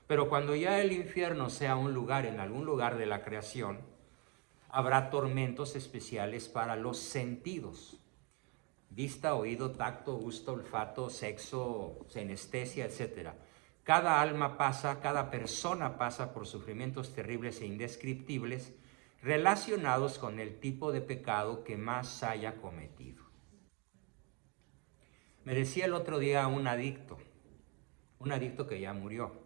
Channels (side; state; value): left; quieter; 32.2 dB